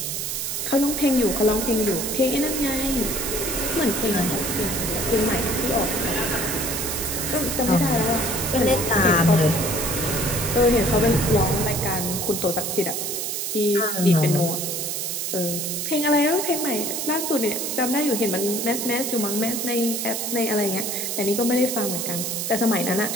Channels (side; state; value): right; noise; hiss, 2 dB below the sound